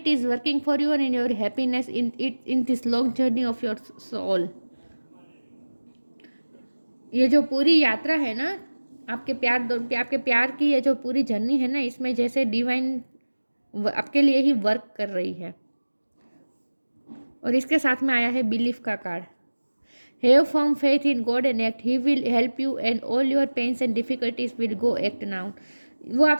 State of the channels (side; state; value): both; inverted; correlation -1.00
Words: is working for you and in your happiness in this long journey of your soul। ये जो पूरी यात्रा है ना, आपके प्यार की ये जो पूरी जर्नी है ना, इसमें जैसे डिवाइन आपके लिए ही वर्क कर रही है। और इसके साथ में आया है बिलीफ का card. Have firm faith in God and act, he will help you and all your pains and difficulties will go act now. वो